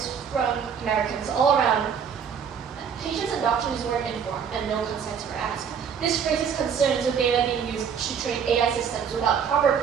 from Americans all around. Patients and doctors weren't informed, and no consents were asked. This raises concerns of data being used to train AI systems without proper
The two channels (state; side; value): quieter; left; 7.2 dB